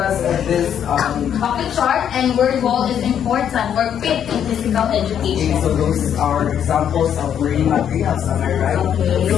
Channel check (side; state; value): right; quieter; 9.1 dB